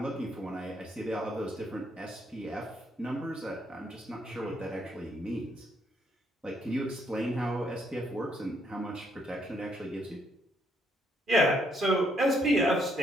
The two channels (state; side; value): normal; both; correlation 0.72